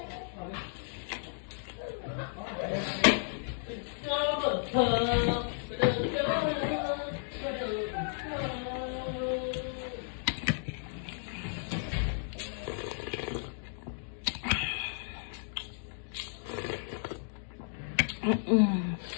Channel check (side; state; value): right; silent; digital silence